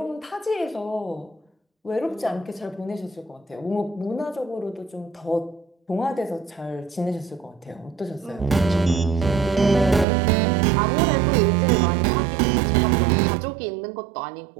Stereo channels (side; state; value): left; drops out; at 10.1 s